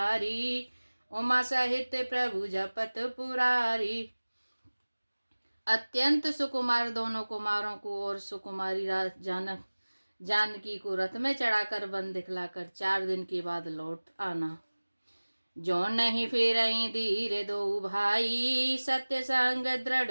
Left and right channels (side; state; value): both; inverted; correlation -1.00